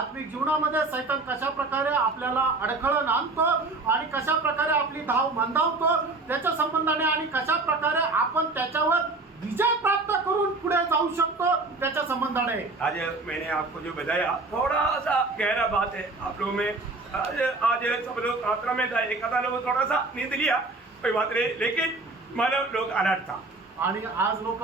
जीवनामध्ये सैतान कशा प्रकारे आपल्याला अडखळण आणतो आणि कशा प्रकारे आपली धाव मंदावतो त्याच्या संबंधाने आणि कशा प्रकारे आपण त्याच्यावर विजय प्राप्त करून पुढे जाऊ शकतो त्याच्या संबंधाने. आज मैंने आपको जो बताया थोड़ा सा गहरा बात है आप लोगों में. आज सब लोग प्रार्थना में था, एक आधा लोग थोड़ा सा नींद लिया, कोई बात नहीं, लेकिन मानव लोग अलर्ट था. आणि आज लोक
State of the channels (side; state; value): left; quieter; 3.4 dB